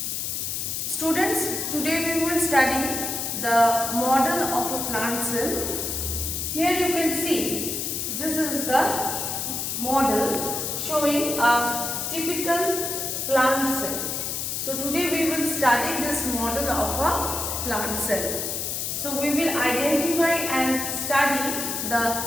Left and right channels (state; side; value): noise; left; hiss, 2 dB below the sound